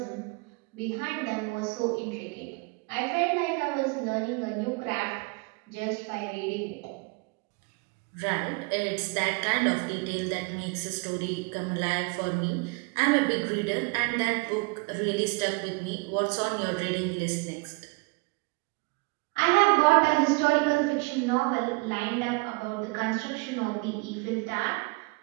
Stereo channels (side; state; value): left; quieter; 28.9 dB